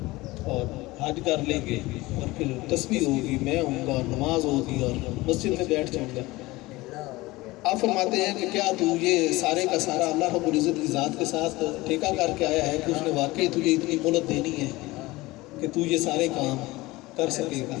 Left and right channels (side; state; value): right; quieter; 20.3 dB